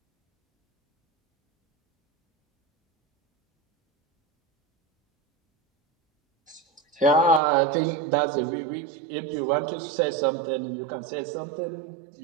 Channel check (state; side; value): drops out; left; at 7.4 s